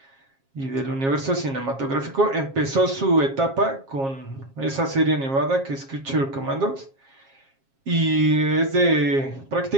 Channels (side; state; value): left; late; 7.4 ms